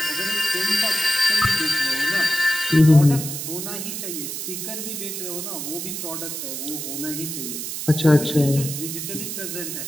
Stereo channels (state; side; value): noise; right; hiss, 5 dB below the sound